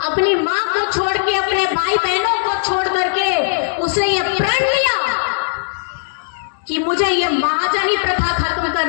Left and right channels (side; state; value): right; silent; digital silence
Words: अपनी माँ को छोड़ के, अपने भाई बहनों को छोड़ करके उसने ये प्रण लिया कि मुझे ये महाजनी प्रथा खत्म